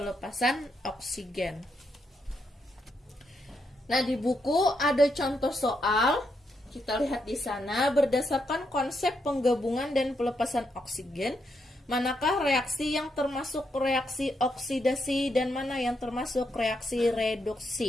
oksigen. Nah, di buku ada contoh soal. Kita lihat di sana, berdasarkan konsep penggabungan dan pelepasan oksigen, manakah reaksi yang termasuk reaksi oksidasi dan mana yang termasuk reaksi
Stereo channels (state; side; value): normal; both; correlation 0.80